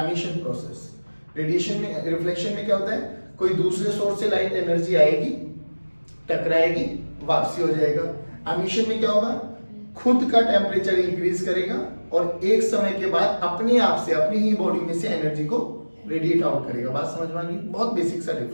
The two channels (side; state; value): both; inverted; correlation -1.00